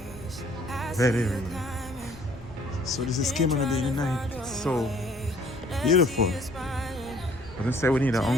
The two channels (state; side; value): noise; left; rumble, 18 dB below the sound